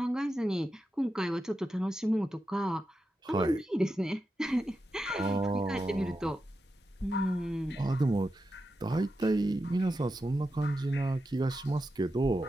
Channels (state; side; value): normal; both; correlation 0.89